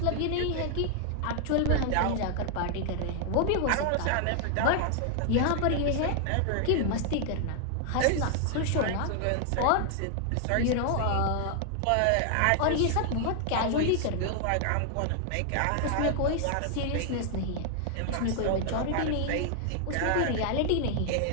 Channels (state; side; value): different; both; correlation 0.00